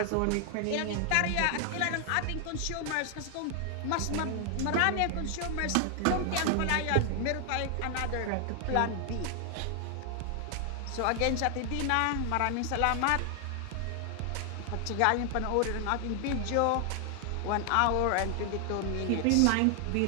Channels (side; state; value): both; different; correlation 0.00